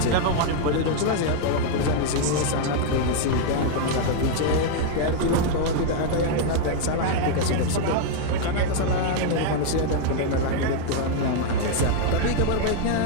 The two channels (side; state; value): both; different; correlation 0.00